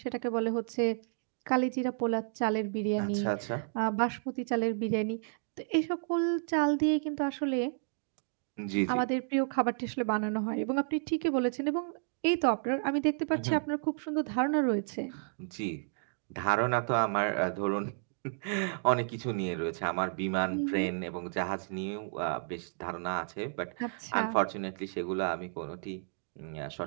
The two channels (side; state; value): left; silent; digital silence